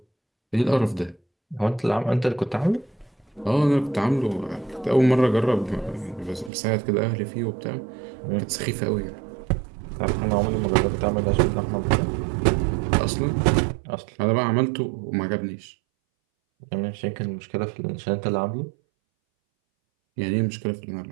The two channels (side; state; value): left; drops out; at 6.5 s